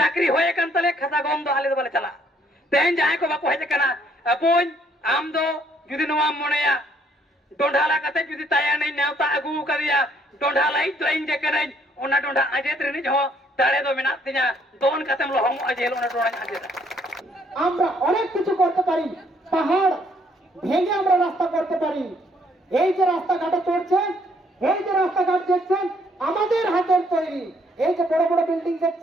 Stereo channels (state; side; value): normal; both; correlation 0.66